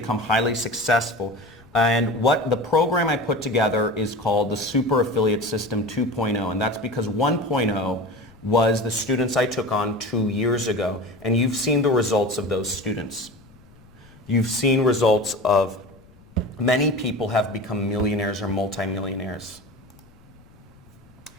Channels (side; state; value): left; noise; rumble, 26 dB below the sound